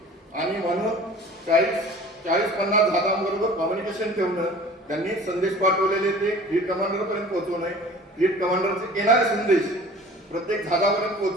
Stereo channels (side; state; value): both; normal; correlation 0.44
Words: आणि म्हणून 40-50 जहाजांबरोबर कम्युनिकेशन ठेवणं, त्यांनी संदेश पाठवलेले ते फ्लीट कमांडर पर्यंत पोहोचवणे, फ्लीट कमांडरचे येणारे संदेश प्रत्येक जहाजापर्यंत